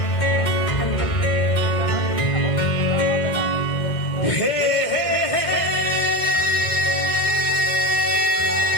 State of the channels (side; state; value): right; late; 2.2 ms